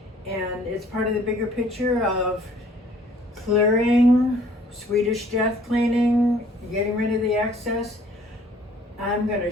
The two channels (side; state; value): both; normal; correlation 0.57